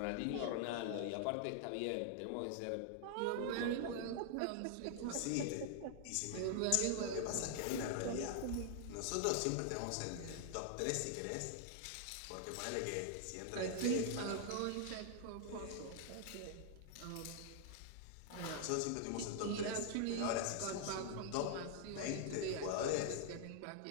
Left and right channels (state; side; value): different; both; correlation 0.00